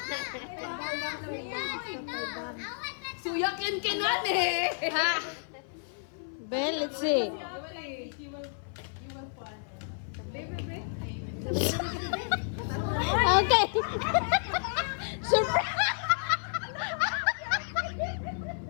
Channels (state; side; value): silent; right; 55 dB below the other